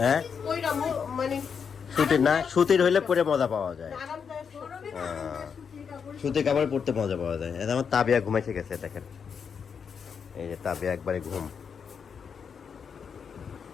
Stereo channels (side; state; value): right; quieter; 6.6 dB